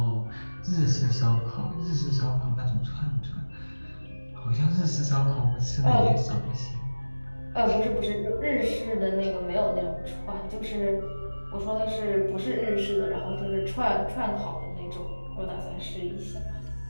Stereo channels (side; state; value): both; inverted; correlation -1.00